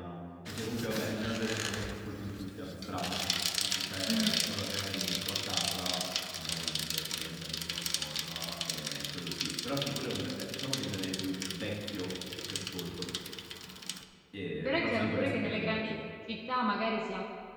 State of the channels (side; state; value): both; identical; correlation 1.00